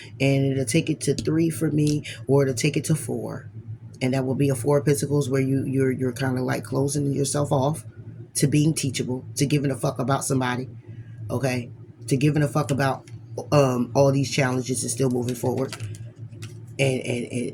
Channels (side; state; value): both; identical; correlation 1.00